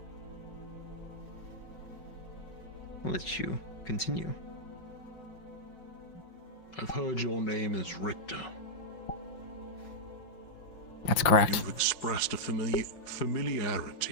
I'll let you continue. I've heard your name is Richter. That's correct. You've expressed a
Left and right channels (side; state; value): right; late; 5.7 ms